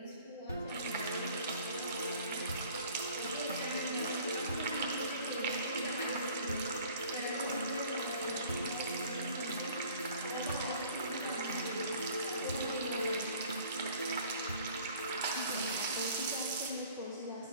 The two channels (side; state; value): both; inverted; correlation -0.52